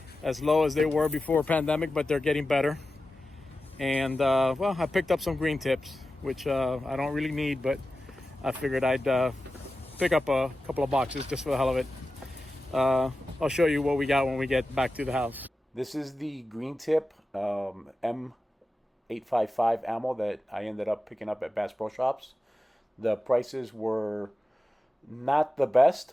low as they were before pandemic, but they're getting better. And well, I picked up some green tips, which I don't really need, but I figured I'd pick up a couple of boxes just for the hell of it. I'll show you what we got when we get back to the house. This is the green tip M855 ammo that I ended up picking up at Bass Pro Shops. The prices were not the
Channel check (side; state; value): both; normal; correlation 0.93